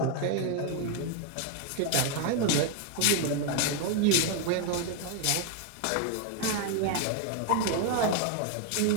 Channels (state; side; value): different; both; correlation 0.01